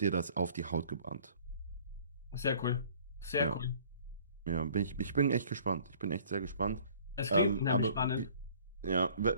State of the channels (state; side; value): inverted; both; correlation -0.54